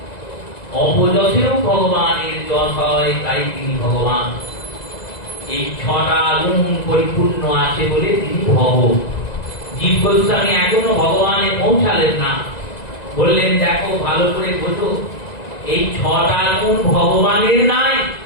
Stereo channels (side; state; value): right; late; 1.9 ms